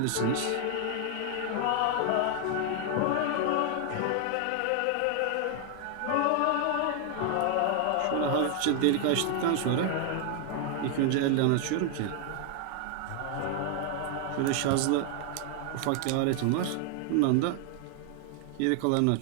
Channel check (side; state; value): both; different; correlation 0.00